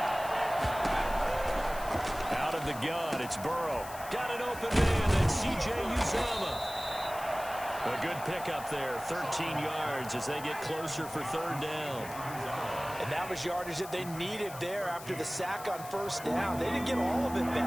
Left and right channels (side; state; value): left; noise; hiss, 15 dB below the sound